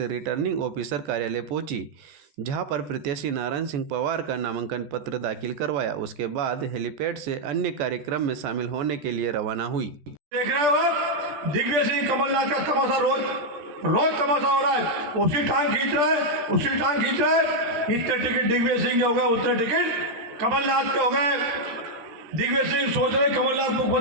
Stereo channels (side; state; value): left; late; 14 ms